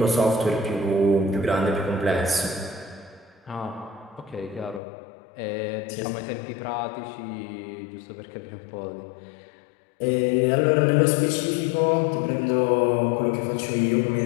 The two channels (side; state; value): right; drops out; at 4.8 s